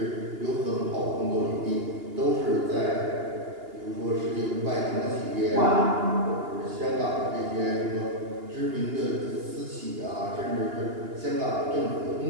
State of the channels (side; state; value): left; late; 2.8 ms